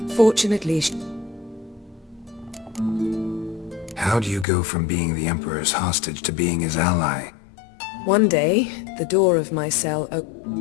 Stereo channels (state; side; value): drops out; right; at 4.5 s